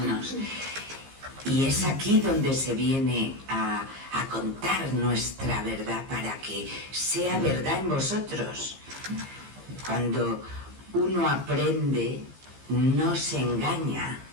Y es aquí donde se viene a contar nuestra verdad para que sea verdad en vosotros. Cuando uno aprende, no se engaña,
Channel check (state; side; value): late; left; 15 ms